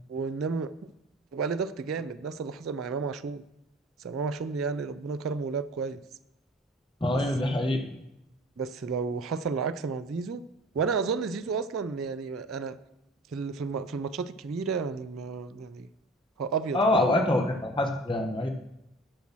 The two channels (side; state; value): both; normal; correlation 0.42